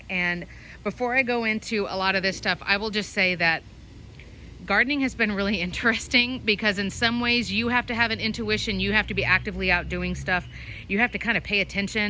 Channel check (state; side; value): identical; both; correlation 1.00